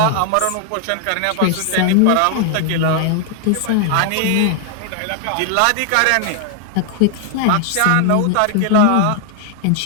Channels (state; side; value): different; both; correlation 0.00